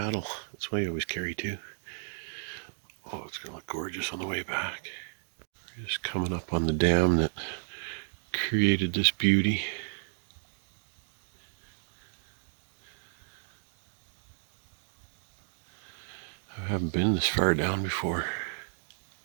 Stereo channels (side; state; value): left; silent; digital silence